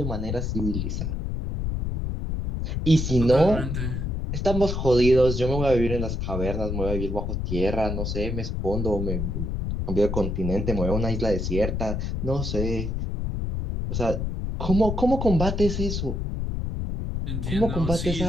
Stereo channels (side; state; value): left; noise; rumble, 2 dB below the sound